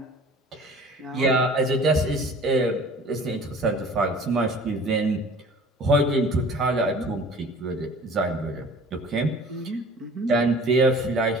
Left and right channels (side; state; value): both; normal; correlation 0.46